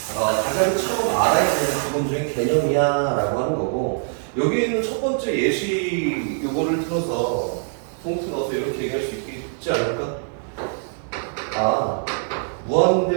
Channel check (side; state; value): left; silent; digital silence